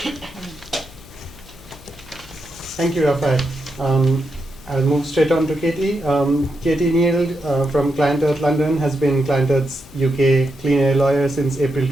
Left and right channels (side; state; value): left; noise; hum, 21 dB below the sound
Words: Thank you, Rafael. I'll move straight on to Katie. Katie Neal from Client Earth London has been Client Earth's UK clean air lawyer since April